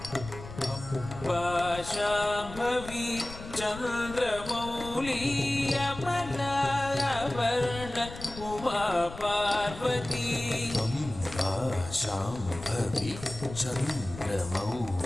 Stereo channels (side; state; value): left; noise; rumble, 13 dB below the sound